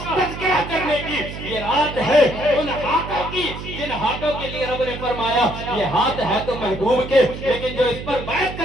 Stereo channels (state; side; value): noise; right; hum, 9 dB below the sound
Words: तज़किरा करने की, ये रात है उन हाथों की जिन हाथों के लिए रब ने फरमाया ये हाथ है तो महबूब के, लेकिन जो इस पर बैत